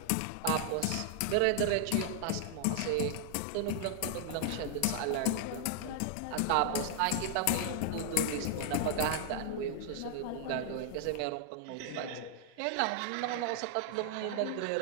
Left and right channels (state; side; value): different; both; correlation 0.00